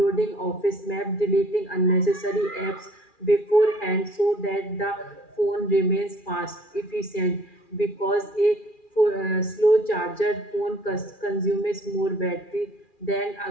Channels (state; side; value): late; right; 2.4 ms